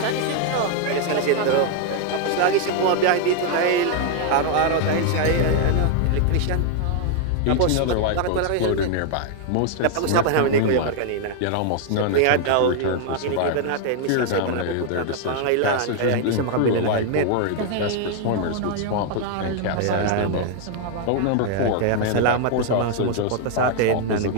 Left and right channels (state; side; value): different; both; correlation 0.00